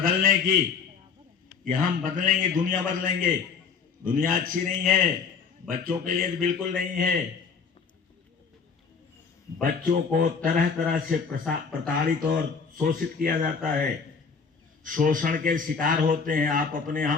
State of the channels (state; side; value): quieter; right; 5.6 dB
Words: की, कि हम बदलेंगे, दुनिया बदलेंगे। दुनिया अच्छी नहीं है, बच्चों के लिए बिल्कुल नहीं है। बच्चों को तरह तरह से प्रताड़ित और शोषित किया जाता है, शोषण के शिकार होते हैं। आप अपने